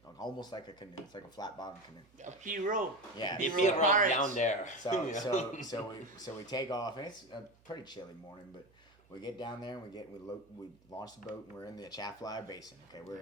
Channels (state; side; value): noise; right; hum, 30 dB below the sound